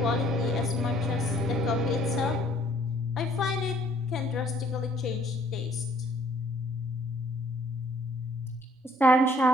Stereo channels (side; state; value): both; normal; correlation 0.61